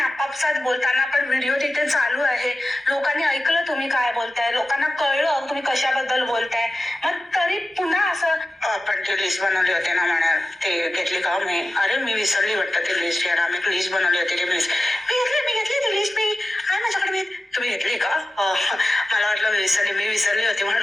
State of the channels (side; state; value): both; normal; correlation 0.94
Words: बोलताना पण व्हिडिओ तिथे चालू आहे, लोकांनी ऐकलं तुम्ही काय बोलताय, लोकांना कळलं तुम्ही कशाबद्दल बोलताय, मग तरी पुन्हा असं आपण ती लिस्ट बनवली होती ना म्हणा, ते घेतली का मी? अरे मी विसरली वाटतं ती लिस्ट. यार आम्ही लिस्ट बनवली होती ती लिस्ट मी घेतली ती लिस्ट, मी आहे माझ्याकडे. तुम्ही घेतली का? मला वाटलं मी विसरली होती